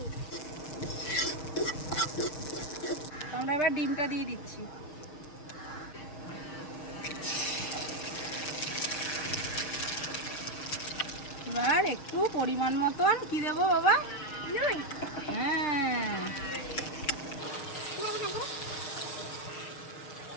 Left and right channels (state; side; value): late; right; 6.7 ms